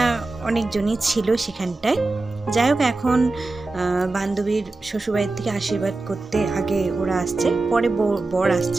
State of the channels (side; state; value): left; quieter; 3.2 dB